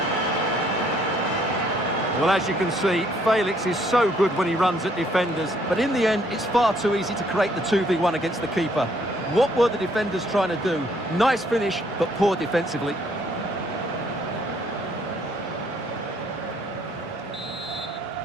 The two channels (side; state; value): both; normal; correlation 0.66